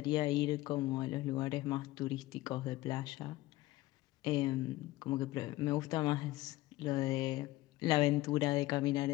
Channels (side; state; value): right; quieter; 17.6 dB